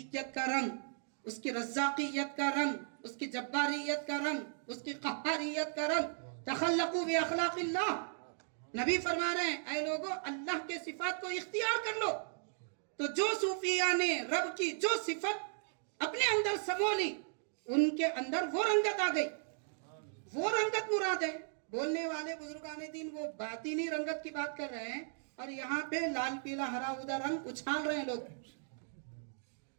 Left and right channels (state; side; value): silent; left; digital silence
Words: کا رنگ، اس کی رزاقیت کا رنگ، اس کی جباریت کا رنگ، اس کی قہاریت کا رنگ. تخلقوا باخلاق اللہ. نبی فرما رہے ہیں اے لوگو اللہ کے صفات کو اختیار کر لو. تو جو صوفیہ نے رب کی جو صفت اپنے اندر سمو لی، ان کے اندر وہ رنگت آ گئی، وہ رنگت مراد ہے. بولنے والے بزرگان دین وہ باطنی رنگت کی بات کر رہے ہیں، اور یہاں پہ لال پیلا ہرا ادا رنگ اچھال رہے ہیں لوگ.